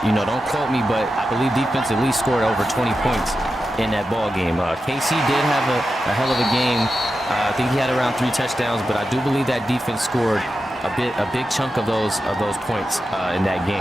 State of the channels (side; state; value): both; normal; correlation 0.90